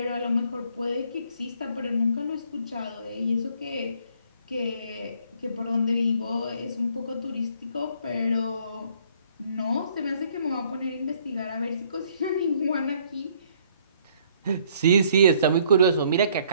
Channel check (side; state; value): both; inverted; correlation -0.63